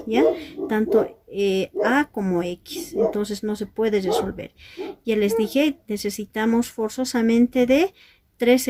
¿ya? Tanto A como X. Entonces no se puede resolver. Ya les dije, necesitamos forzosamente de tres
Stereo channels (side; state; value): both; identical; correlation 1.00